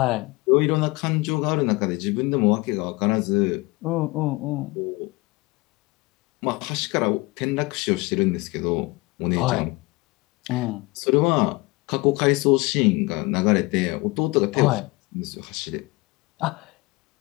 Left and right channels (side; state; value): right; quieter; 23.8 dB